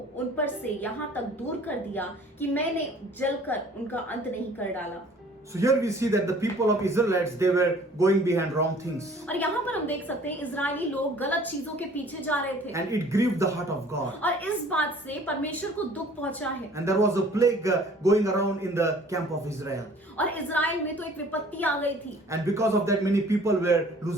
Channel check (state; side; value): normal; both; correlation 0.52